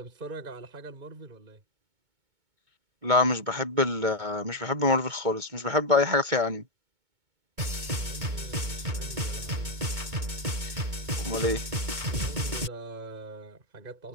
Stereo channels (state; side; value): late; left; 2.2 ms